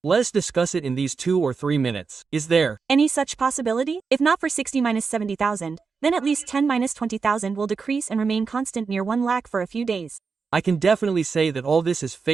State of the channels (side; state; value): left; quieter; 5.1 dB